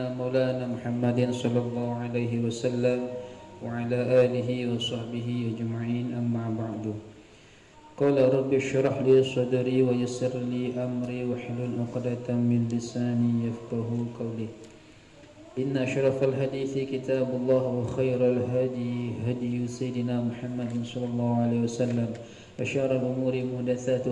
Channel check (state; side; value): identical; both; correlation 1.00